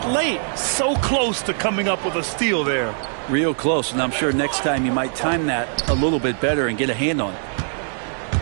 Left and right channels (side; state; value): left; silent; digital silence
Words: late. So close to coming up with a steal there. Real close, and I'm sure next time you might time that a little bit better and get a hand on it.